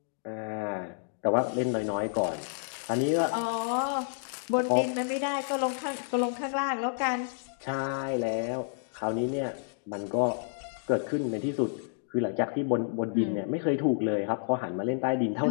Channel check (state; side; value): silent; right; digital silence